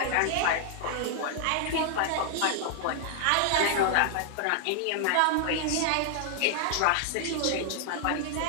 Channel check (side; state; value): both; different; correlation 0.00